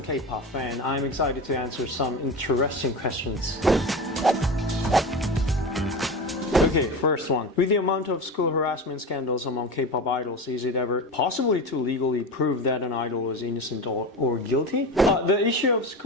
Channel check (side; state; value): both; normal; correlation 0.26